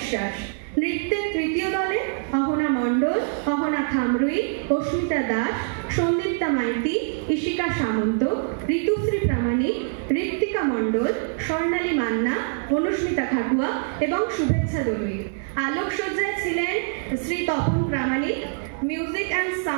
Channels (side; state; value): left; silent; 61 dB below the other